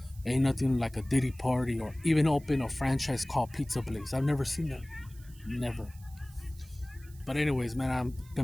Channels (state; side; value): noise; right; hiss, 25 dB below the sound